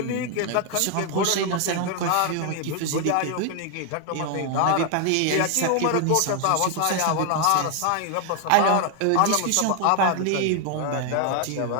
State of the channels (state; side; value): different; both; correlation 0.00